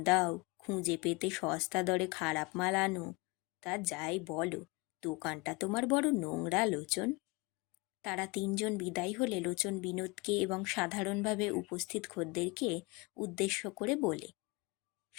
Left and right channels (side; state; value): right; quieter; 26.2 dB